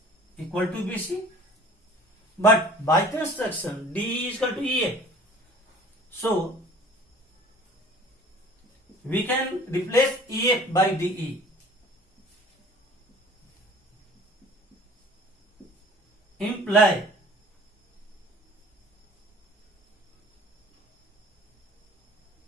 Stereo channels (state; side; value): normal; both; correlation 0.48